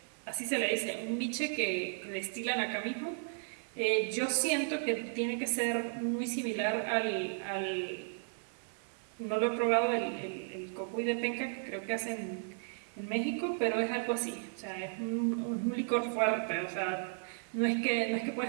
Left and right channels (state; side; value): silent; left; digital silence